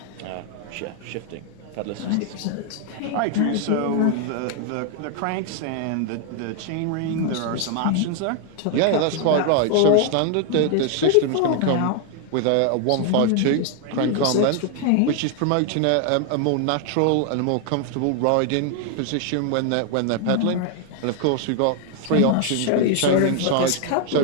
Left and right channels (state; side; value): different; both; correlation 0.00